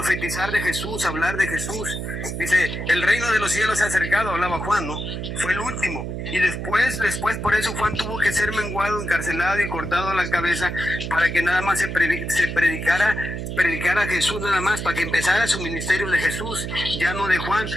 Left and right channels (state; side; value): noise; right; hum, 5 dB below the sound